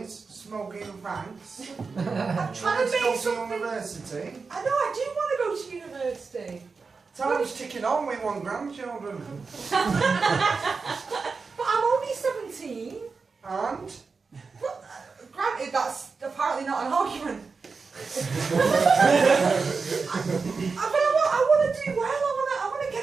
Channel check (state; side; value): quieter; left; 4.7 dB